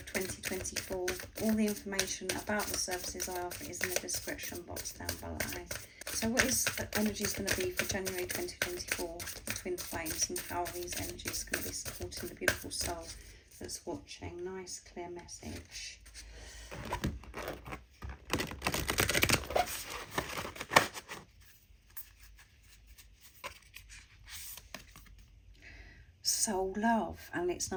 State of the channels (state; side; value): identical; both; correlation 1.00